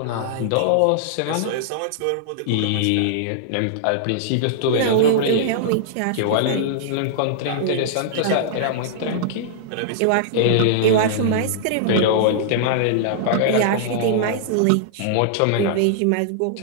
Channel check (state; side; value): different; both; correlation -0.02